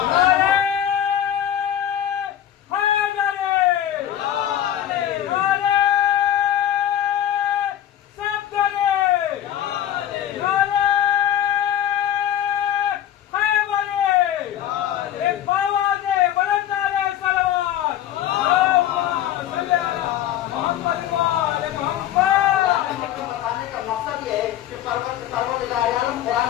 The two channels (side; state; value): right; quieter; 11.6 dB